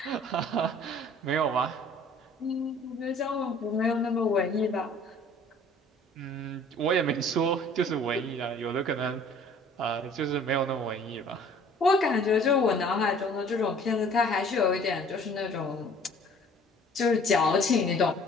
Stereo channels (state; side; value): normal; both; correlation 0.52